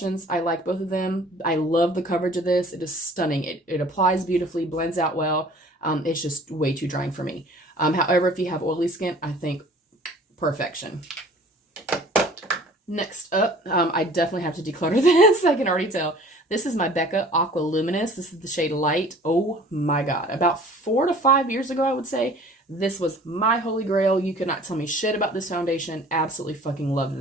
I like both of them. I love the coverage of this. It is stunning. It applies beautifully, blends out well. It's just way too drying for me. However, if you have oily skin, I think perfection. Next up, I definitely have to declutter this. I can already tell. This is my Becca Aqua Luminous. This is the shade Light. Oh my God. About 4 to 5 years ago, I would say, this was my holy grail. You could not tell me shit about this foundation. Absolutely fucking loved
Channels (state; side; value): normal; both; correlation 0.49